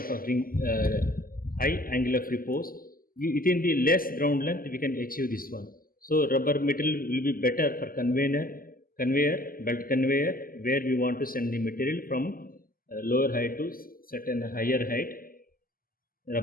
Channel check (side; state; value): right; late; 0.42 ms